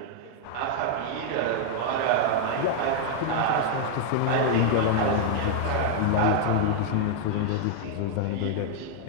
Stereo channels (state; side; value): different; both; correlation 0.00